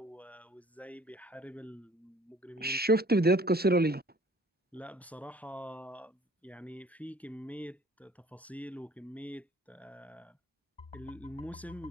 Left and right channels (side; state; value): both; normal; correlation 0.54